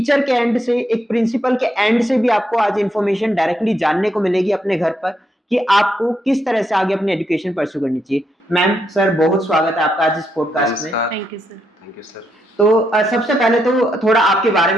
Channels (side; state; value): both; normal; correlation 0.79